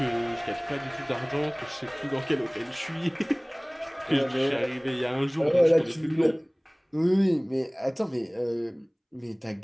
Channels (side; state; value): both; identical; correlation 1.00